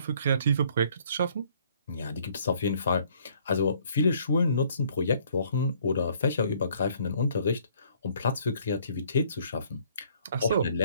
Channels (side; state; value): both; inverted; correlation -0.61